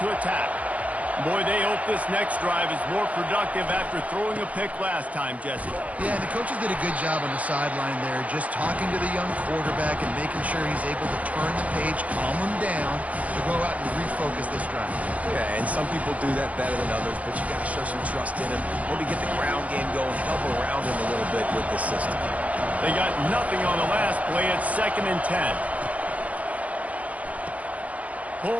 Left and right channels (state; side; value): late; left; 0.068 ms